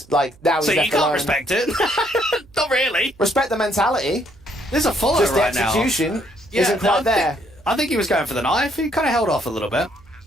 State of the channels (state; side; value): noise; right; hum, 27 dB below the sound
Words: like, now he's so left you can't alone. respect it? Not really. Respect the mentality. There's a follow Just right the now. execution isn't quite there. I think he was going for the knife. He kind of held off a little bit.